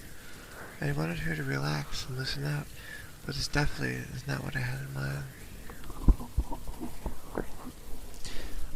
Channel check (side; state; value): both; identical; correlation 1.00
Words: I wanted her to relax and loosen up, but this definitely is not what I had in mind.